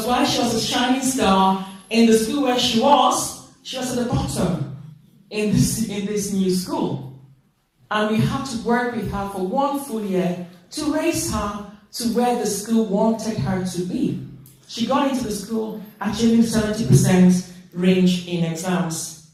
while she was a shining star in the school where she was at the bottom in this new school. And we had to work with her for 1 full year to raise her to where the school wanted her to be. She got into the school achieving 70% range in exams,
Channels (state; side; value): identical; both; correlation 1.00